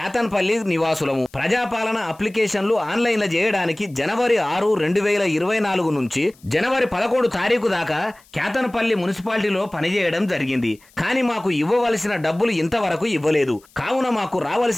నివాసులము. ప్రజాపాలన అప్లికేషన్లు ఆన్లైన్లో చేయడానికి జనవరి 6, 2024 నుంచి జనవరి 11 తారీఖు దాకా క్యాతన్పల్లి మున్సిపాలిటీలో పనిచేయడం జరిగింది. కానీ మాకు ఇవ్వవలసిన డబ్బులు ఇంతవరకు ఇవ్వలేదు. కావున మాకు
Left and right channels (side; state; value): left; noise; hiss, 29 dB below the sound